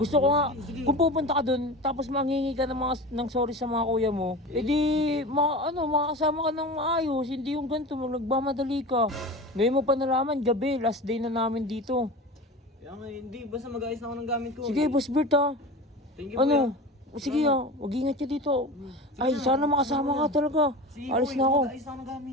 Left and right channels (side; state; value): both; normal; correlation 0.32